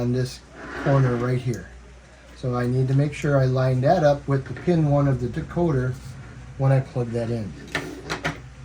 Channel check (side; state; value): both; identical; correlation 1.00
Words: this corner right here. So I need to make sure I line that up with the pin 1 of the decoder when I plug that in.